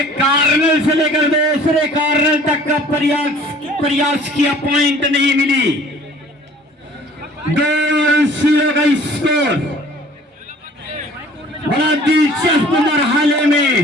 कार्नल से लेकर दूसरे कार्नल तक का प्रयास किया, पॉइंट नहीं मिली। 2-0 का स्कोर बड़ा दिलचस्प मरहले में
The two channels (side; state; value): both; normal; correlation 0.51